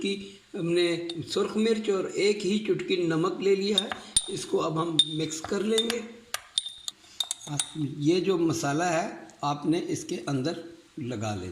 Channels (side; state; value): both; identical; correlation 1.00